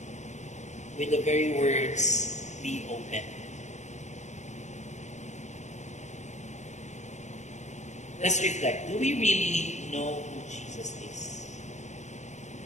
with the very words, be open. Let's reflect. Do we really know who Jesus is?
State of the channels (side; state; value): right; late; 0.34 ms